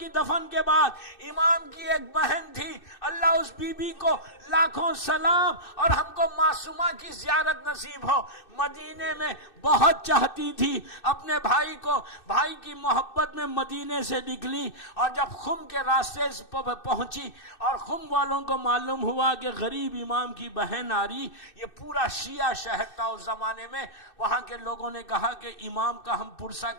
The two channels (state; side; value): late; right; 2.6 ms